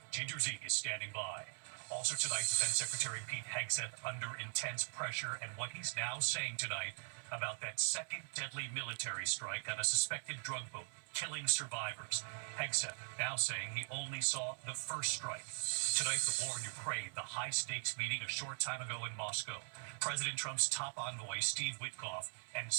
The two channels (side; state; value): left; silent; 50 dB below the other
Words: Ginger Z is standing by. Also tonight, Defense Secretary Pete Hegseth under intense pressure and what he's now saying tonight about that second deadly military strike on a suspected drug boat, killing survivors. Hegseth now saying he only saw the first strike. Tonight, the war in Ukraine, the high-stakes meeting a short time ago in Moscow. President Trump's top envoy, Steve Witkoff, and